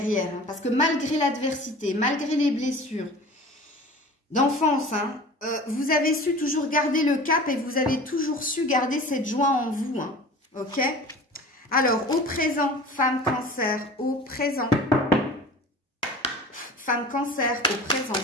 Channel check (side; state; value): both; normal; correlation 0.39